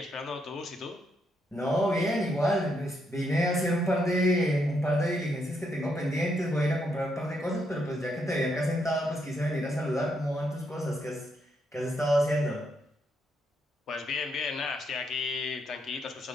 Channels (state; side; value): normal; both; correlation 0.77